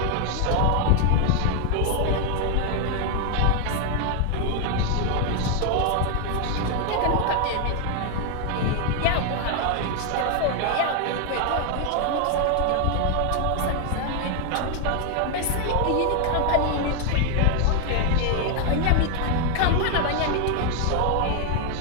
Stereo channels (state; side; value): different; both; correlation 0.01